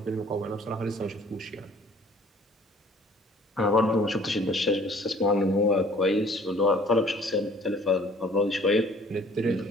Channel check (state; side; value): normal; both; correlation 0.55